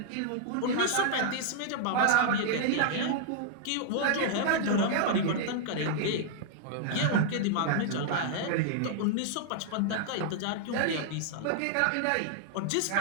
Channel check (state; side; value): different; both; correlation -0.01